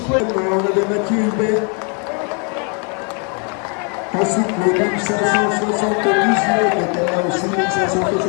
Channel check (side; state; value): right; quieter; 37.6 dB